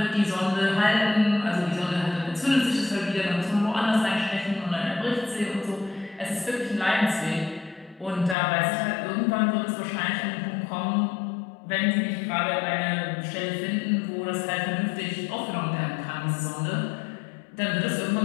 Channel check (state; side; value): drops out; right; at 8.3 s